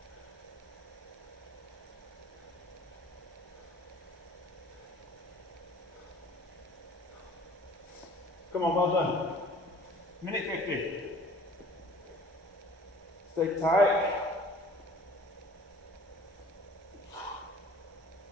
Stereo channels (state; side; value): normal; both; correlation 0.48